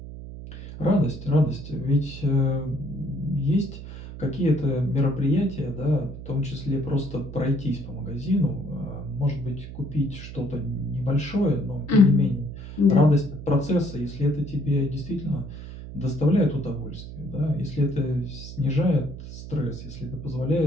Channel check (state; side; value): noise; right; hum, 11 dB below the sound